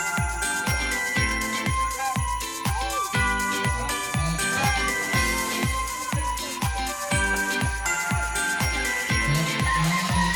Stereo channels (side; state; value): both; identical; correlation 1.00